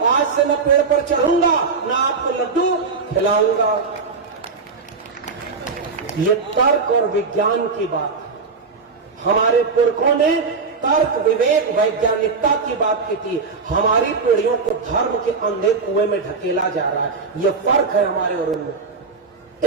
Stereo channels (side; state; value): left; quieter; 4.7 dB